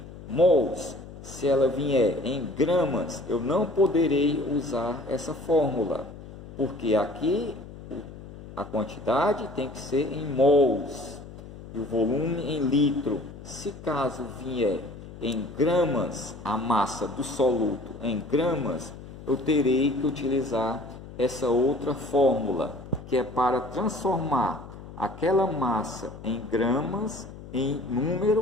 mols, se ela vier em gramas, eu não poderei usar essa fórmula, porque aqui a quantidade tem que ser em mols e o volume em litro. Se caso vier em gramas, a massa do soluto em gramas, eu terei que utilizar essa outra fórmula, que é para transformar aquela massa em gramas em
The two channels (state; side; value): noise; left; hum, 15 dB below the sound